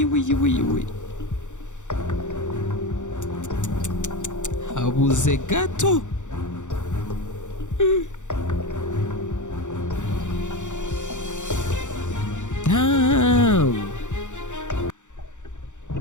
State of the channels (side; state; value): right; late; 0.85 ms